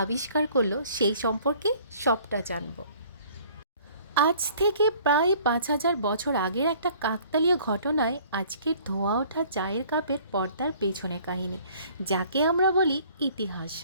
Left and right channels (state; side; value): inverted; both; correlation -0.54